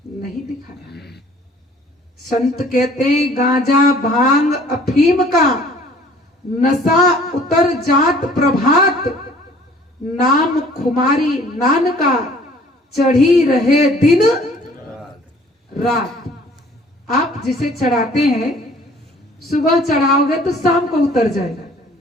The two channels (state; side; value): normal; both; correlation 0.54